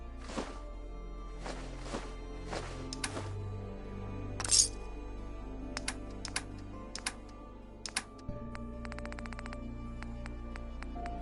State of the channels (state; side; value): identical; both; correlation 1.00